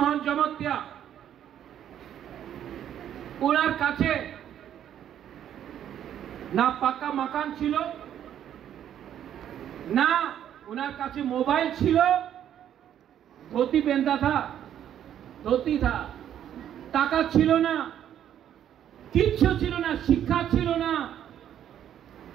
জমতিয়া, ওনার কাছে না পাকা মাকান ছিল, না ওনার কাছে মোবাইল ছিল, धोती पहनता था, धोती था, টাকা ছিল না, কিচ্ছু ছিল না, শিক্ষা ছিল না।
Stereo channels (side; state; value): left; quieter; 10.3 dB